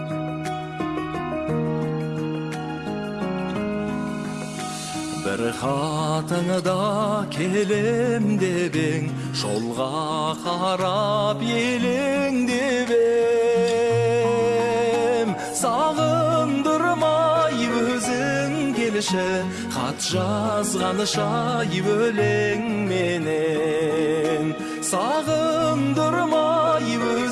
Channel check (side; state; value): both; identical; correlation 1.00